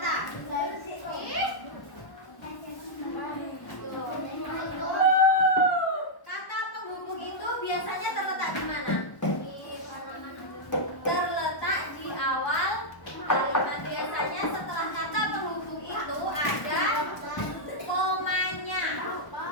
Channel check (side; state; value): right; late; 1.1 ms